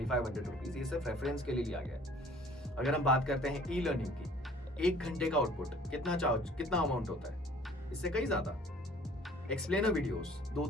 रुपीज, ये सिर्फ रेफरेंस के लिए लिया गया है। अगर हम बात करते हैं ई लर्निंग की, 1 घंटे का आउटपुट कितना अमाउंट होता है? इससे कहीं ज्यादा। एक्सप्लेनर वीडियोस,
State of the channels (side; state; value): both; normal; correlation 0.52